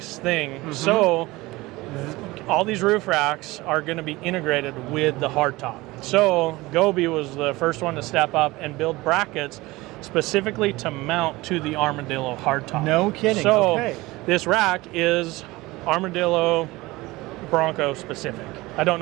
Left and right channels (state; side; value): quieter; left; 20.5 dB